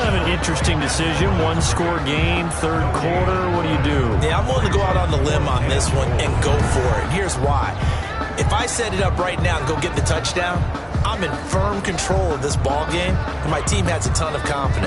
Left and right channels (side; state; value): both; identical; correlation 1.00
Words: of an interesting decision. One-score game, third quarter. What do you do? Yeah, I'm willing to go out on the limb on this one and go for it. Here's why. If I set it up right now and go get the touchdown, I'm in firm control of this ball game, and my team has a ton of